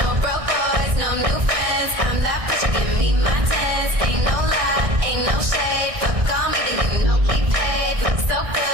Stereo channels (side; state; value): left; late; 1.6 ms